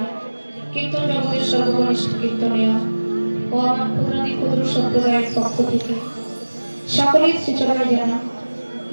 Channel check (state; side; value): inverted; both; correlation -1.00